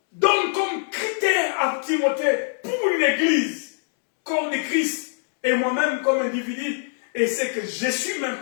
donne comme critère à Timothée pour une église, corps de Christ, et moi-même comme individu, et ce que je suis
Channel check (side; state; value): right; silent; digital silence